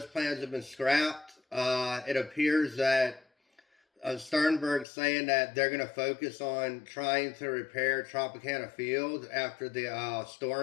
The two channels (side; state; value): right; drops out; at 4.9 s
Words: plans have been scrapped. It appears that Sternberg's saying that they're going to focus on trying to repair Tropicana Field after the